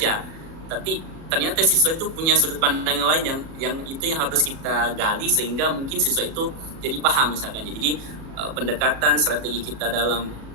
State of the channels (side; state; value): left; late; 37 ms